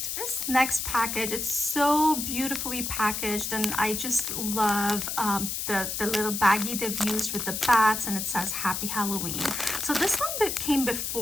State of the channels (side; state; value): left; noise; hiss, 3 dB below the sound